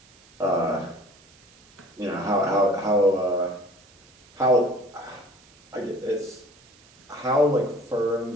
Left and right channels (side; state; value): right; noise; hiss, 28 dB below the sound